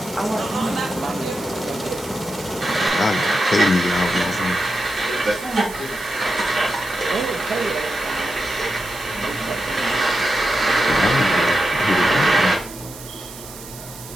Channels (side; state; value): right; noise; hiss, 15 dB below the sound